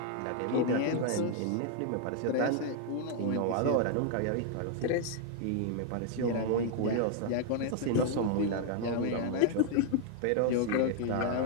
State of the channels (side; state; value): both; different; correlation 0.00